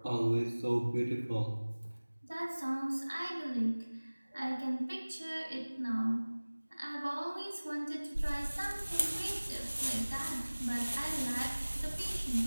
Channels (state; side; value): inverted; both; correlation -1.00